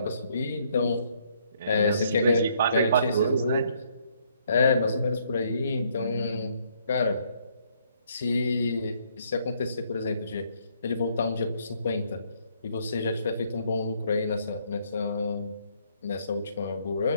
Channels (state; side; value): inverted; both; correlation -0.69